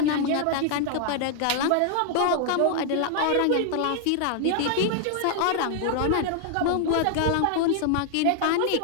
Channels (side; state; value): both; different; correlation 0.00